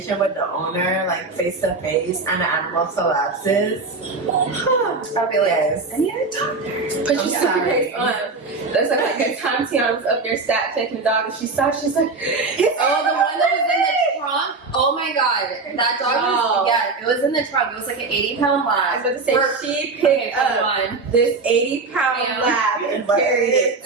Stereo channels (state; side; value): quieter; left; 3.9 dB